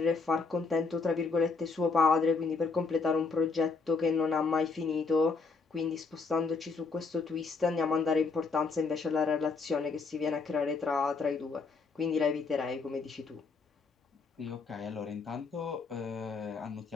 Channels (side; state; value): right; quieter; 4.4 dB